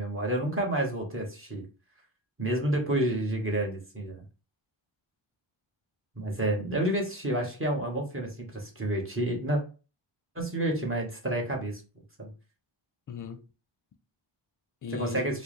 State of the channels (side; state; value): both; normal; correlation 0.24